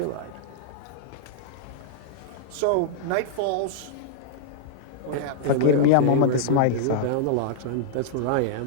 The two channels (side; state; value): both; different; correlation -0.01